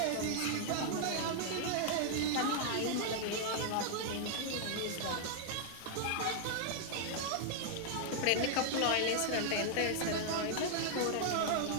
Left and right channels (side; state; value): both; different; correlation 0.00